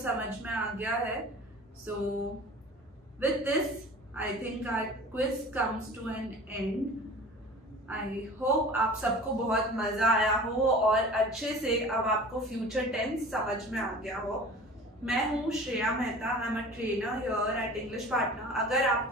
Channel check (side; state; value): both; normal; correlation 0.41